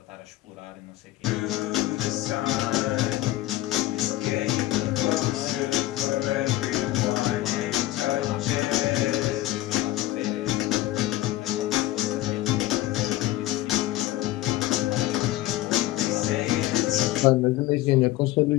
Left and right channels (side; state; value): right; quieter; 16.2 dB